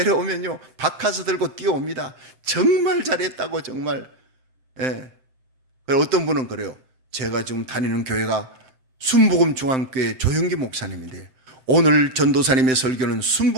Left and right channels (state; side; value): late; left; 7.7 ms